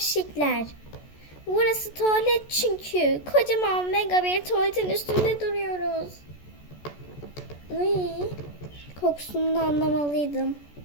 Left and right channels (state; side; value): late; right; 14 ms